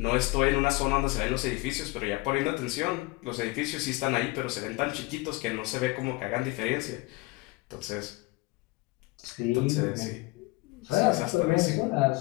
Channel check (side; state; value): right; quieter; 23.1 dB